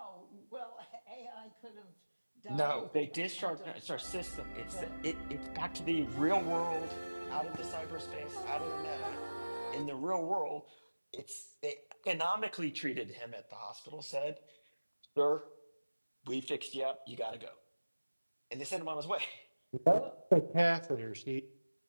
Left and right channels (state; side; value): inverted; both; correlation -1.00